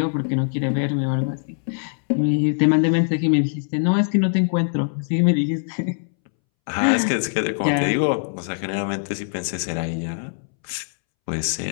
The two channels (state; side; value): silent; right; 64 dB below the other